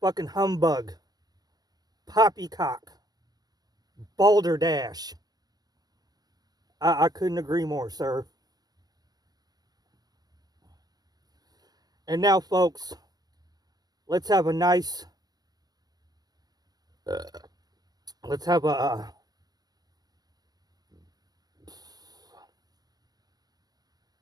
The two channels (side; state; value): left; late; 0.19 ms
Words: humbug. Poppycock. Balderdash. I couldn't agree more, sir. And now, folks, let's have a nice, let's have a